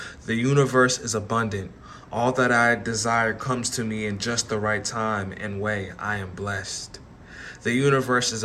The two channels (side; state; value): both; identical; correlation 1.00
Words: The universe is abundant. All that I desire comes to me in just the right time and way. I am blessed. The universe is